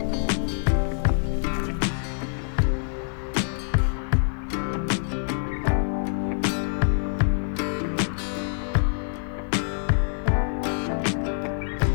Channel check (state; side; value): silent; right; 61 dB below the other